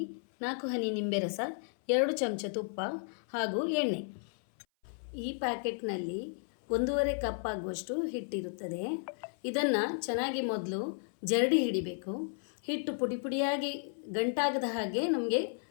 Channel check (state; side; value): silent; right; 55 dB below the other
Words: 4 ಹನಿ ನಿಂಬೆ ರಸ, 2 ಚಮಚ ತುಪ್ಪ ಹಾಗೂ ಎಣ್ಣೆ. ಈ ಪ್ಯಾಕೆಟ್ನಲ್ಲಿ 1.5 ಕಪ್ ಆಗುವಷ್ಟು ಹಿಟ್ಟಿರುತ್ತದೆ. ಇದನ್ನು ಚೆನ್ನಾಗಿ ಮೊದಲು ಜರಡಿ ಹಿಡಿಬೇಕು. ಹಿಟ್ಟು ಪುಡಿ ಪುಡಿಯಾಗಿ ಗಂಟಾಗದ ಹಾಗೆ ನಮಗೆ